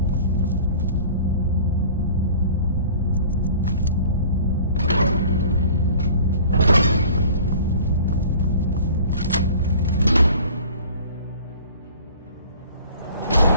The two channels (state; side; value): inverted; both; correlation -0.46